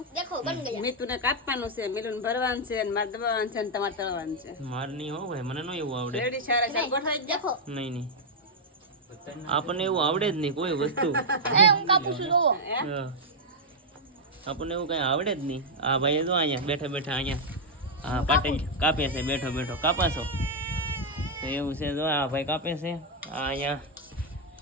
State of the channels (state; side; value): normal; both; correlation -0.03